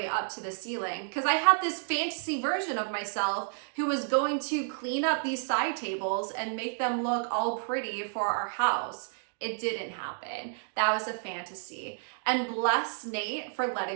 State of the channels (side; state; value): left; silent; digital silence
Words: up to the ceiling, because I had this fantasy version of myself who was going to clean up these side tables and make them look all pretty for our house. It didn't happen. That was a fantasy. And bless Nate for